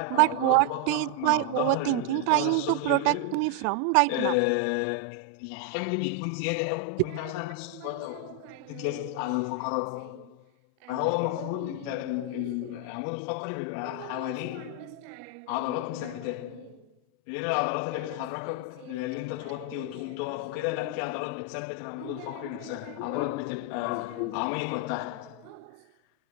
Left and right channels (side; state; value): both; different; correlation 0.00